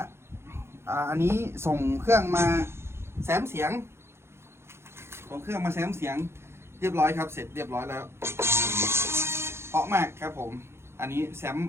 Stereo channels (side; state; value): left; late; 0.12 ms